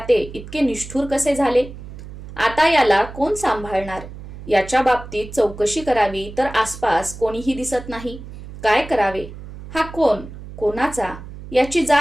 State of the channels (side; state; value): right; noise; hum, 14 dB below the sound